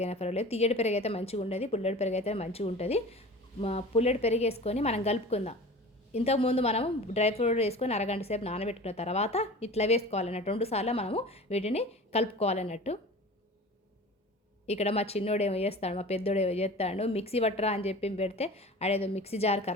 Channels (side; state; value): both; normal; correlation 0.38